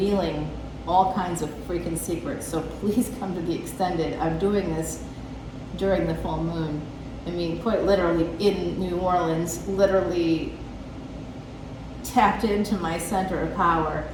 all kinds of freaking secrets. So please come to the extended. I'm doing this during the full moon. I mean, quite literally in New Orleans, literally tapped into my center of power.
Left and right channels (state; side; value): identical; both; correlation 1.00